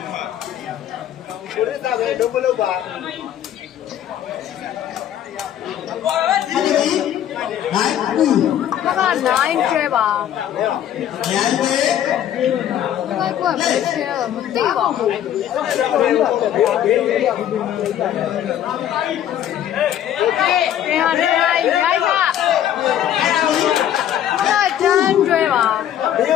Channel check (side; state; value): right; quieter; 10.8 dB